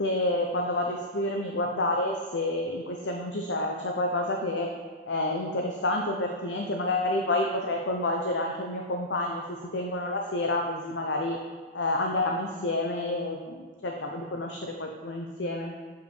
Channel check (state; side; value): normal; both; correlation -0.15